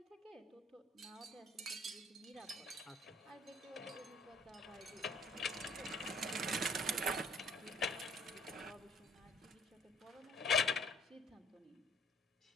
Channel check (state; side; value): normal; both; correlation 0.60